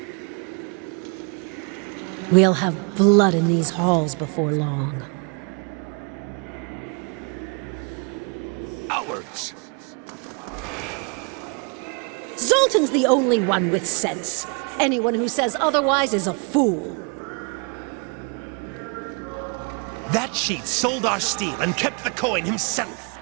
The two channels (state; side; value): quieter; left; 35.8 dB